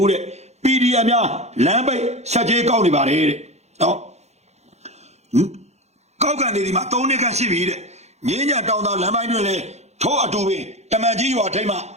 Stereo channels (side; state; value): left; late; 0.32 ms